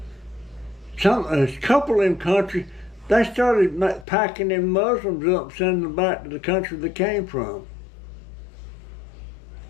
a couple of them countries, they started packing them Muslims up, sending them back to the country they came from.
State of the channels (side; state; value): right; drops out; at 4.0 s